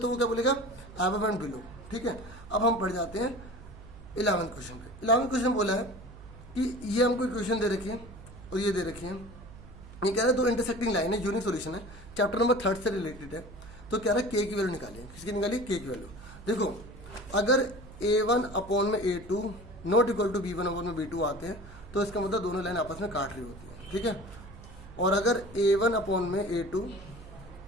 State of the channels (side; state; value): right; noise; hum, 17 dB below the sound